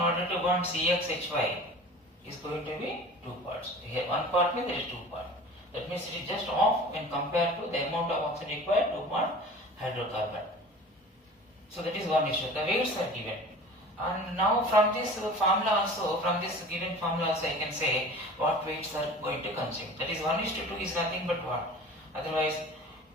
to bond CXHY is going to be 2 parts. Here 1 part means there is 2 parts. That means it is just off when compared to the amount of oxygen required to bond hydrocarbon. So that is 1 issue. The weights are given. And now from this formula also, from this given formula also I can say what weights are going to consume. That is 1 is to 2 is nothing but what? Otherwise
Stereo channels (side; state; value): both; normal; correlation 0.40